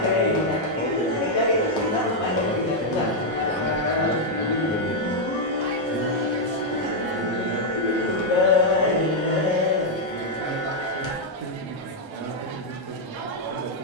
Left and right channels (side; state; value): both; normal; correlation -0.02